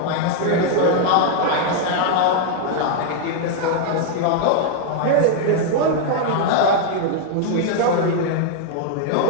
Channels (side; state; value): both; different; correlation 0.00